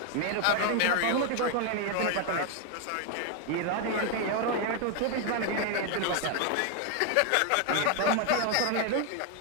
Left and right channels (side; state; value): both; different; correlation 0.01